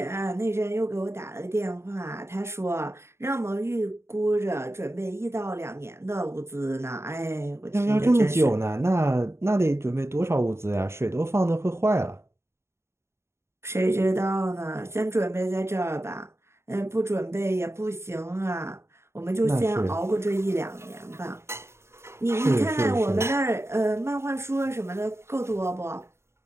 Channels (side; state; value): left; late; 0.13 ms